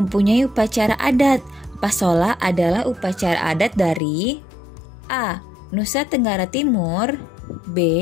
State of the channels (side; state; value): right; drops out; at 4.0 s